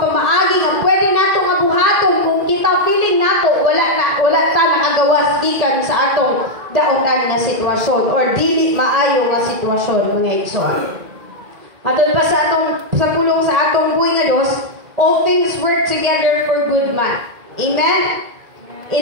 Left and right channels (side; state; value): left; late; 1.8 ms